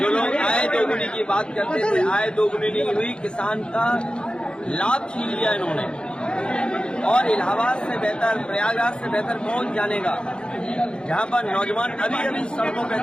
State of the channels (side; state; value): right; late; 0.052 ms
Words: लोग आय दोगुनी की बात करते थे, आय दोगुनी नहीं हुई, किसान का लाभ छीन लिया इन्होंने। और इलाहाबाद से बेहतर, प्रयागराज से बेहतर कौन जानेगा, जहां पर नौजवान अभी अभी सड़कों पे